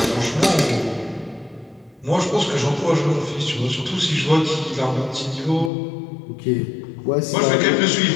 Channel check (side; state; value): right; drops out; at 5.7 s